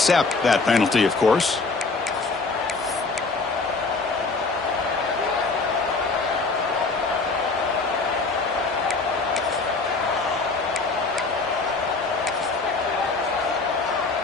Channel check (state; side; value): quieter; right; 3.9 dB